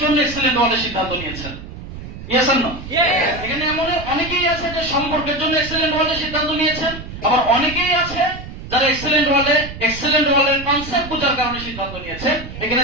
জন্য এক্সেলেন্ট ওয়ার্ল্ডের সিদ্ধান্ত নিয়েছেন। Yes or no? এখানে এমন অনেকেই আছে যে সম্পর্কের জন্য এক্সেলেন্ট ওয়ার্ল্ডের সিদ্ধান্ত নিয়েছেন, আবার অনেকেই আছে যারা এক্সেলেন্ট ওয়ার্ল্ডের কনসেপ্ট বোঝার কারণে সিদ্ধান্ত নিয়েছে। এখানে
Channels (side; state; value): right; noise; rumble, 11 dB below the sound